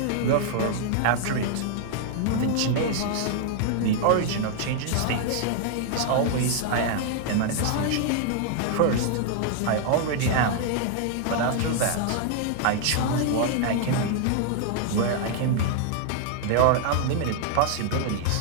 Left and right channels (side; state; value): both; different; correlation 0.00